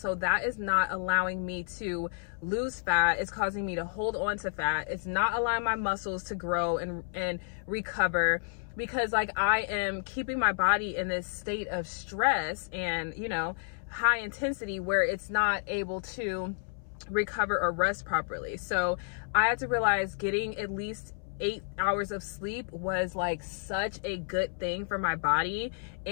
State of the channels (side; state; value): right; silent; 57 dB below the other